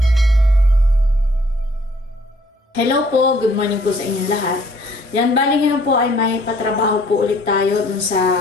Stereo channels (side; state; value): both; normal; correlation 0.60